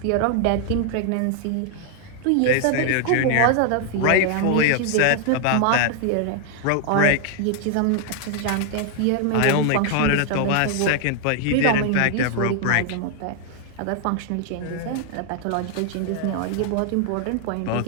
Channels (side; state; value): both; different; correlation 0.00